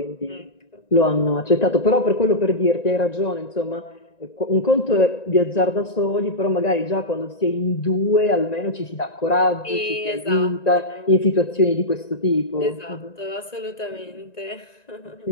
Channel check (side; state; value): right; late; 1.9 ms